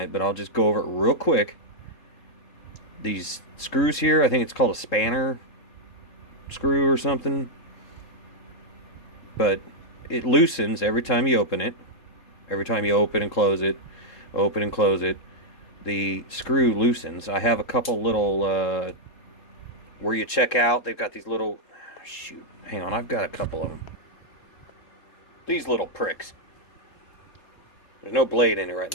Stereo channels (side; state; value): right; late; 3.7 ms